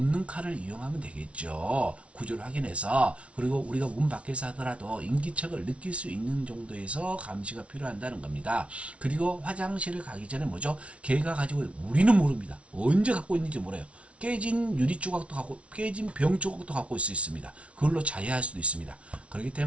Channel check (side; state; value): left; late; 0.062 ms